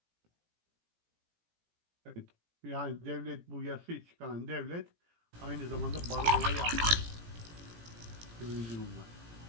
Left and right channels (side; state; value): left; late; 17 ms